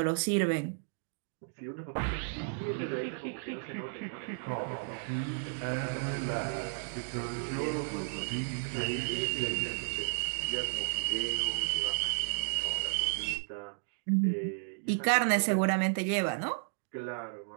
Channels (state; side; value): silent; left; digital silence